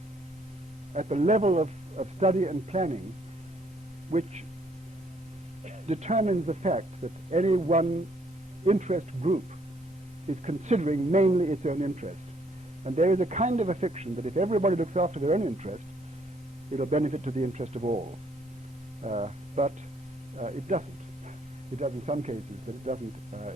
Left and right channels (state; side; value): normal; both; correlation 0.66